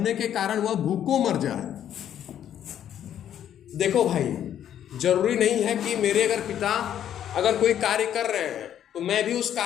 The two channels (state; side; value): quieter; right; 10.3 dB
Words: के कारण वह भूखों मर जाए। देखो भाई, जरूरी नहीं है कि मेरे अगर पिता अगर कोई कार्य कर रहे हैं तो मैं भी उस